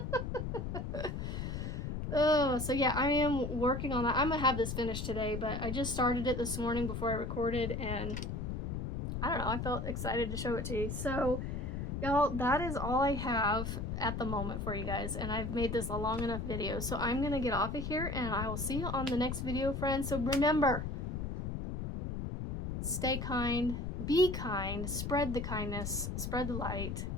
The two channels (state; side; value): noise; left; rumble, 4 dB below the sound